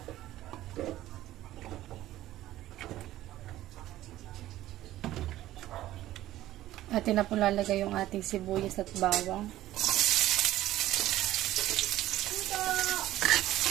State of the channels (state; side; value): quieter; left; 14.7 dB